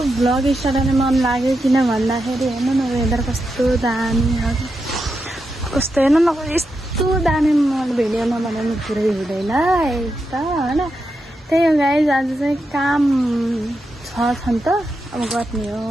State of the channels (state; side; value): normal; both; correlation 0.86